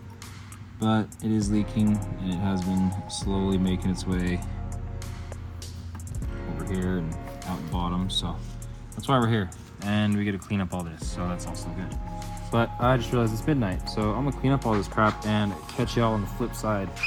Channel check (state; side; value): identical; both; correlation 1.00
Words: but it is leaking, and it has been slowly making its way over here and out the bottom, so that's why we're here. And we get to clean up all this, so that's also good. But I just realized it's midnight, so I'm gonna clean up all this crap and catch y'all on the flip side